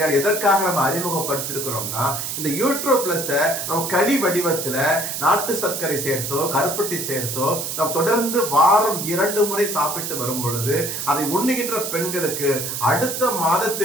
எதற்காக நம்ம அறிமுகப்படுத்திருக்கிறோம்னா, இந்த யூட்ரோ பிளஸ் நம்ம களி வடிவத்துல நாட்டு சர்க்கரை சேர்த்தோ கருப்பட்டி சேர்த்தோ நம்ம தொடர்ந்து வாரம் 2 முறை சாப்பிட்டு வரும் பொழுது அதை உண்ணுகின்ற பெண்களுக்கு அடுத்த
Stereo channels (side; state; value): right; noise; hiss, 4 dB below the sound